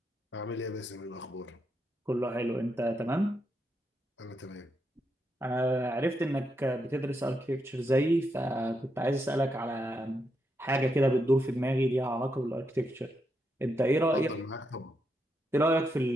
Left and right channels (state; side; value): normal; both; correlation 0.82